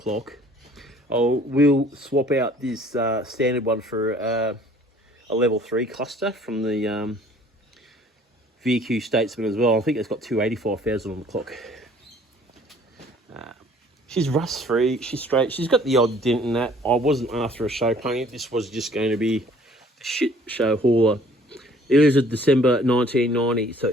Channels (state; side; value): normal; both; correlation 0.55